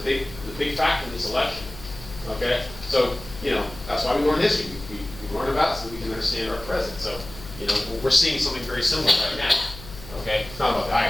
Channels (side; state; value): left; noise; hum, 15 dB below the sound